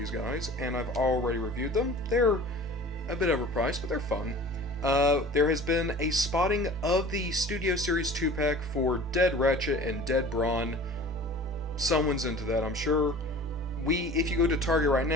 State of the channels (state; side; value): normal; both; correlation 0.42